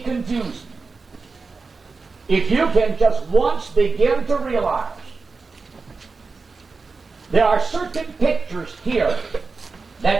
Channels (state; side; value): quieter; left; 4.4 dB